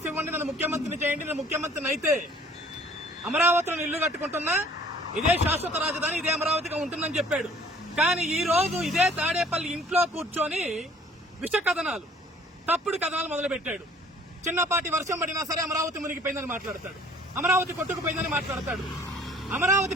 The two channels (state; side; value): normal; both; correlation 0.54